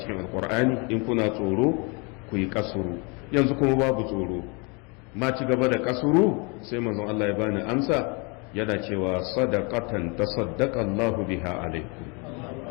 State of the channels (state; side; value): quieter; right; 31.7 dB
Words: cikin alkur'ani, in kuna tsoro ku yi kasuru, yanzu kuma babu tsoro, ma ci gaba da kasuru. sai manzon Allah ya bani amsa, yana cewa sadaqatan tasaddaqa Allahu biha alaikum,